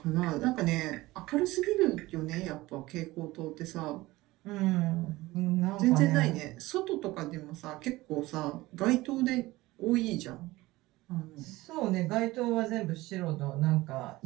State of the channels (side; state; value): left; quieter; 19.1 dB